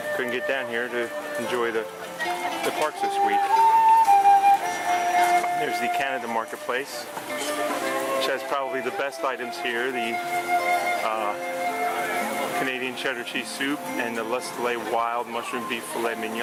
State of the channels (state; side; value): identical; both; correlation 1.00